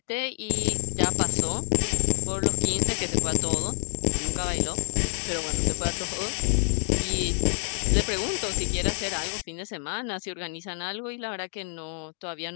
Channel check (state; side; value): silent; right; digital silence